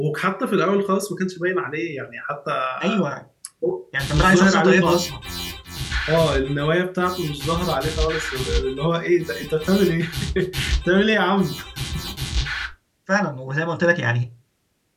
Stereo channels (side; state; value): both; identical; correlation 1.00